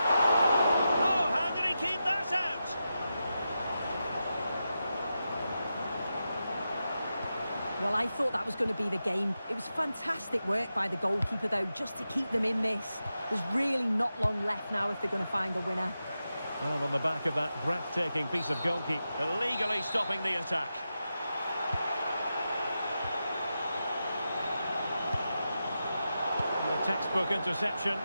Oh, how did he keep that out? Well, I thought that was going to be the game. It was fantastic work by the goalkeeper, though, just to keep them in this. There's really not long left now if they're going to find a winner. Well, on the back of that breathtaking piece of goalkeeping, illegally stopping the attack. And a textbook interception.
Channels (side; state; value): both; inverted; correlation -0.90